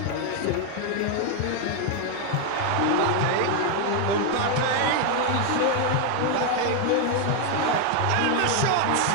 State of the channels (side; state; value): both; different; correlation 0.01